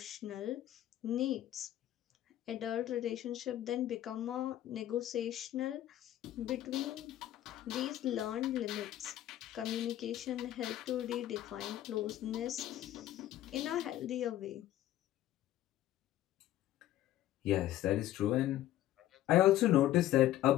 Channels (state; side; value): quieter; right; 13.3 dB